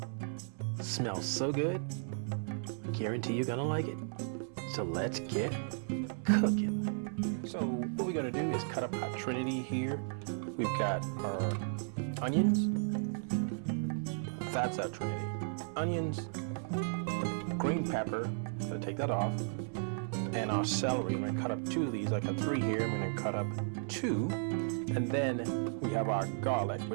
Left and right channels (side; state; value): left; silent; 55 dB below the other